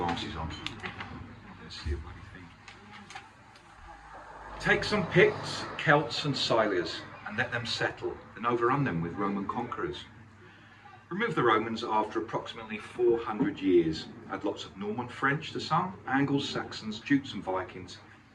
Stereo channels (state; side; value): identical; both; correlation 1.00